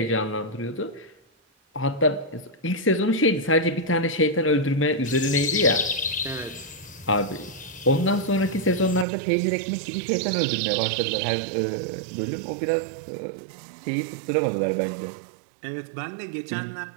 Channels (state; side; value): drops out; left; at 9.1 s